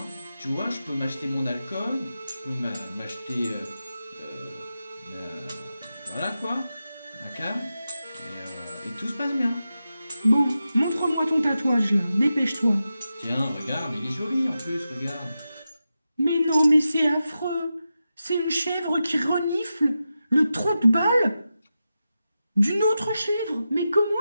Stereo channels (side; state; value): both; inverted; correlation -0.91